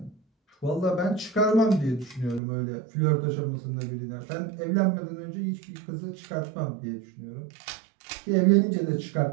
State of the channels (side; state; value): left; drops out; at 2.4 s